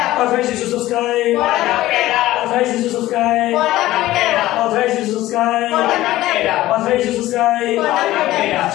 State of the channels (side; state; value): right; quieter; 16.0 dB